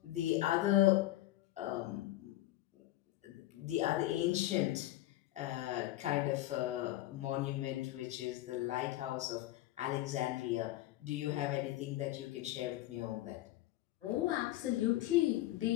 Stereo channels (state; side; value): quieter; right; 15.8 dB